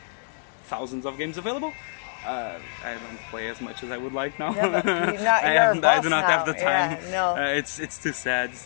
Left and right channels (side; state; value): right; silent; digital silence